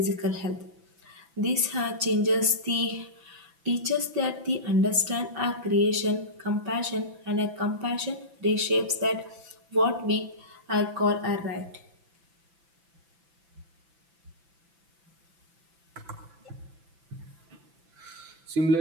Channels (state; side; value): late; left; 6.0 ms